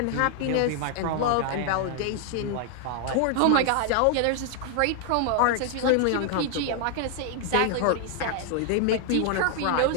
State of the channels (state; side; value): different; both; correlation 0.00